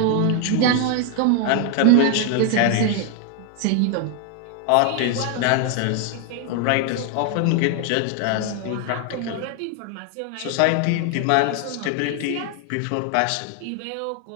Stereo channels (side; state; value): both; different; correlation 0.01